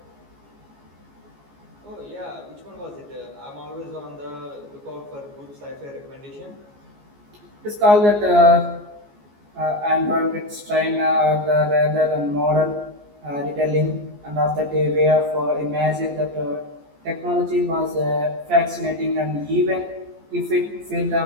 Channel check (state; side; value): late; left; 14 ms